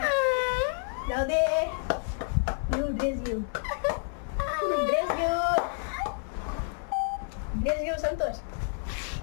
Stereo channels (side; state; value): right; silent; 58 dB below the other